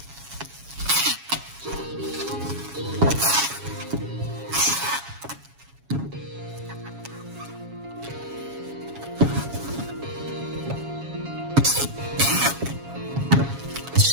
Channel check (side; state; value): left; late; 7.2 ms